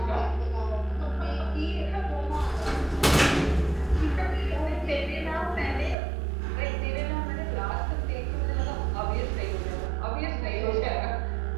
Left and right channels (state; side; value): drops out; left; at 6.0 s